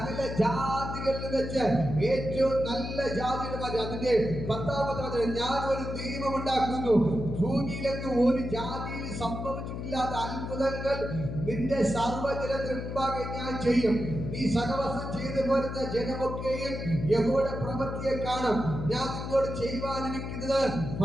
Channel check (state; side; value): noise; left; hum, 6 dB below the sound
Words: ജാതികളിൽ വെച്ച് ഏറ്റവും നല്ല ജാതിയുടെ മാറ്റി. അതിന്റെ 10ാമത്തെ വചനം, ഞാൻ ഒരു ദൈവം ഉണ്ടാക്കുന്നു, ഭൂമിയിലെങ്ങും ഒരു ജാതിയിൽ സംഭവിച്ചിട്ടില്ലാത്ത അത്ഭുതങ്ങൾ നിന്റെ സർവ്വജനത്തിന് മുമ്പാകെ ഞാൻ ചെയ്യും. നീ സഹവാസം ചെയ്തു പോരുന്ന ജനമൊക്കെയും യഹോവയുടെ പ്രവൃത്തിയെ കാണും. ഞാൻ നിന്നോട് ചെയ്യുവാനിരിക്കുന്നത്